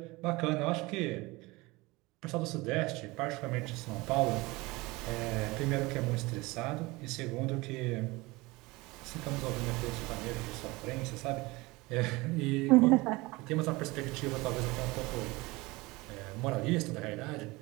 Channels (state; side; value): quieter; left; 22.6 dB